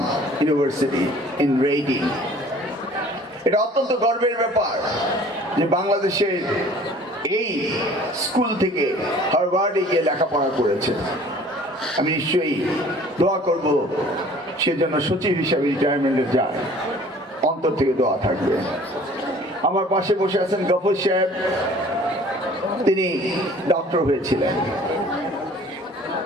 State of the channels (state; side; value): normal; both; correlation 0.50